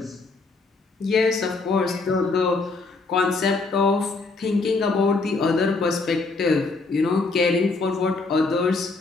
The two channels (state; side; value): quieter; right; 3.8 dB